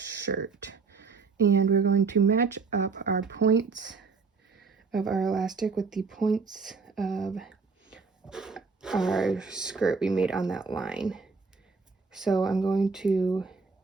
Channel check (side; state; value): left; quieter; 4.7 dB